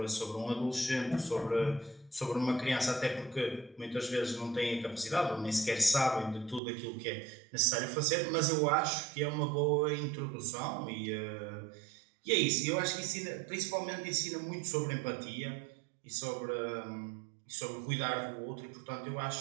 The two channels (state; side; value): drops out; left; at 6.6 s